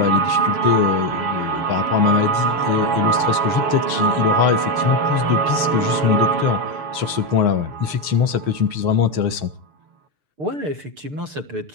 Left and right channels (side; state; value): left; late; 6.3 ms